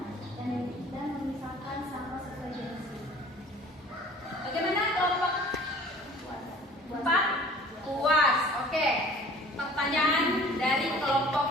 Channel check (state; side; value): normal; both; correlation 0.48